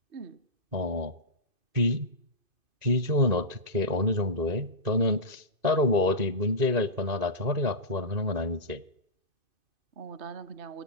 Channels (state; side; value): late; left; 2.5 ms